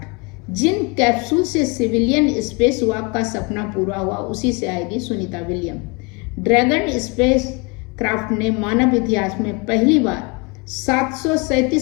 जिन कैप्सूल से सिविलियन स्पेस वॉक का सपना पूरा हुआ उसी से आएगी Sunita William. Dragon spacecraft ने मानव इतिहास में पहली बार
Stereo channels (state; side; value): quieter; right; 30.0 dB